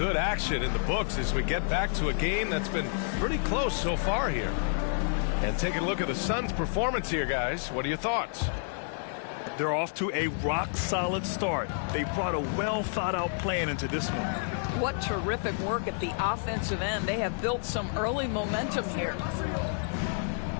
action in the books as we get back to a game that's been pretty close so far here. And taking a look at the Suns' performance here, guys. What are your thoughts? They're off to a rock-solid start. They brought a well-thought-out plan into this one. What terrific work at the offensive end. They have built some early momentum here.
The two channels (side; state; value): right; silent; digital silence